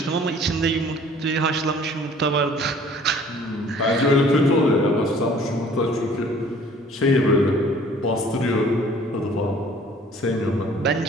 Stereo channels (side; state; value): both; normal; correlation 0.53